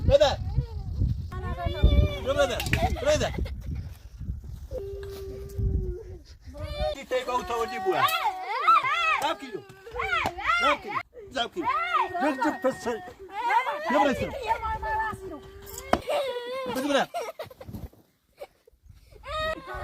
ماذا ماذا ماذا تيجي أو تودي بوها ذاب كيلو ذاب كيلو ذاب كيلو جد بس يا بريسل بس بنا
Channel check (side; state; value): both; identical; correlation 1.00